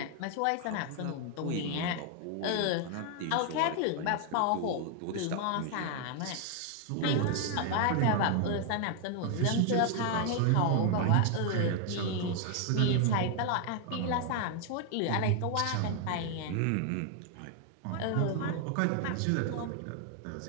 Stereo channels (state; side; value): different; both; correlation 0.00